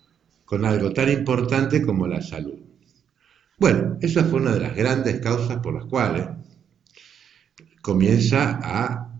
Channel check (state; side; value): quieter; left; 8.4 dB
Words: con algo tan importante como la salud. Bueno, esa fue una de las grandes causas por las cuales comienza a